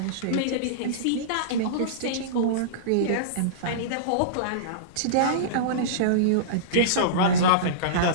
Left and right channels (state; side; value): different; both; correlation -0.04